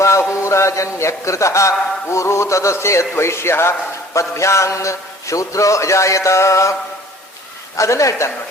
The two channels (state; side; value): normal; both; correlation 0.50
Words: ಊರು ತದಸ್ಯದ್ವೈಶ್ಯ ಪದ್ಭ್ಯಾಂಗ್ ಶೂದ್ರೋ ಅಜಾಯತ. ಅದನ್ನ ಹೇಳ್ತಾನೆ